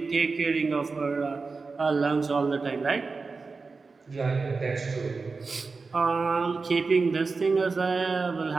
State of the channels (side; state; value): left; quieter; 4.3 dB